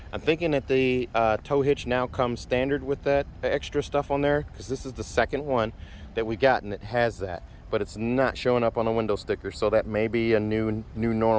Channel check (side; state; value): both; identical; correlation 1.00